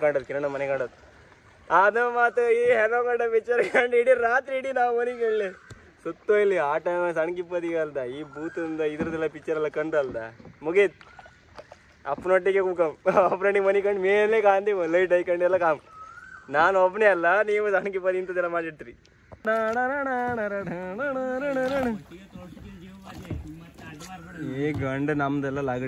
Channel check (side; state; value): both; identical; correlation 1.00